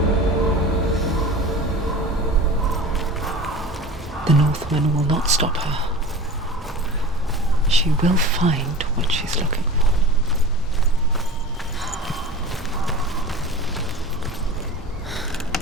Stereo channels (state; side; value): normal; both; correlation 0.36